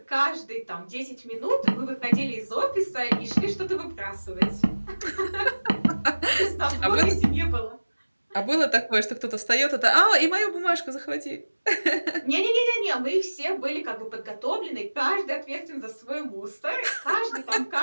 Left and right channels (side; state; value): both; inverted; correlation -1.00